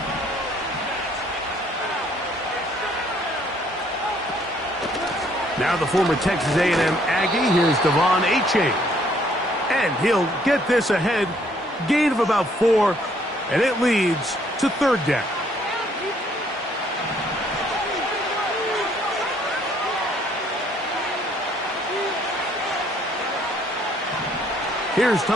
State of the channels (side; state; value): both; normal; correlation 0.65